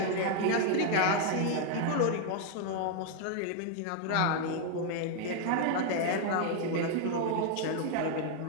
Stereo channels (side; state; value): both; different; correlation 0.00